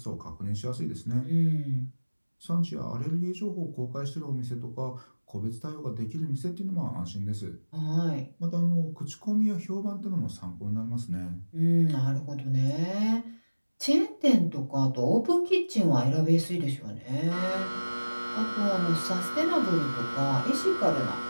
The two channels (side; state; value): both; inverted; correlation -1.00